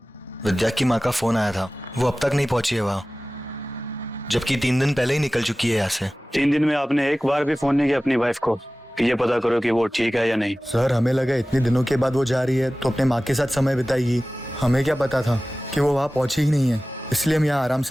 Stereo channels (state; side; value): normal; both; correlation 0.97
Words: विद्या की माँ का फोन आया था, वो अब तक नहीं पहुंची है वहाँ, जबकि 3 दिन पहले ही निकल चुकी है यहाँ से। 3 दिन में आपने एक बार भी फोन नहीं किया अपनी वाइफ को कि ये पता करो कि वो ठीक है या नहीं? सर, हमें लगा इतने दिनों के बाद वो जा रही है तो अपने माँ के साथ समय बिताएगी। हमें क्या पता था कि वो वहाँ पहुंची ही नहीं है, इसलिए हम यहाँ आराम